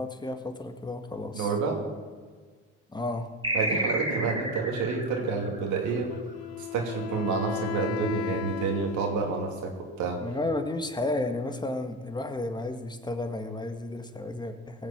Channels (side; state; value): both; normal; correlation 0.20